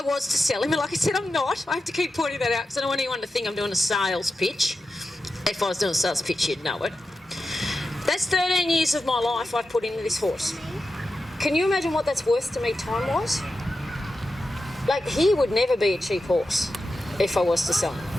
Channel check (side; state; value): both; normal; correlation 0.91